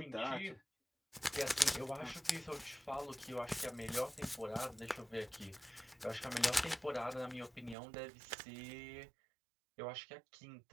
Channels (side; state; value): left; drops out; at 7.8 s